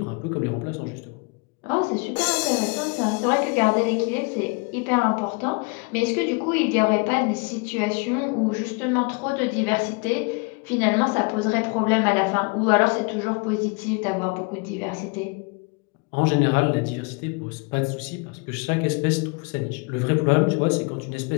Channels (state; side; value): quieter; right; 30.9 dB